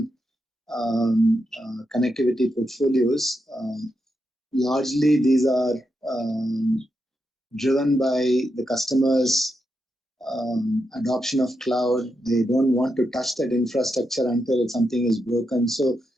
connectivity portfolios, largely these are driven by the customers' adoption of cloud. They don't want to touch that infrastructure until something is broken. So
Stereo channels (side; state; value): both; normal; correlation 0.85